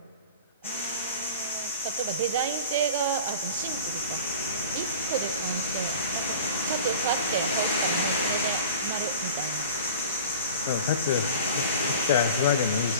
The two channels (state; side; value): inverted; both; correlation -0.38